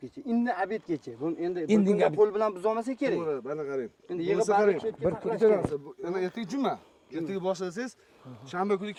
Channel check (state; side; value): identical; both; correlation 1.00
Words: indin obedgacha. Buni endi Indin bir qo'l bilan buza olmasa kerak. To'g'ri, mana qarang. Endi Yig'ib yig'ib qarang. barcha Bir kuncha narsa. Yana ertaga juma. Ertaga boshlasangiz, shanba kuni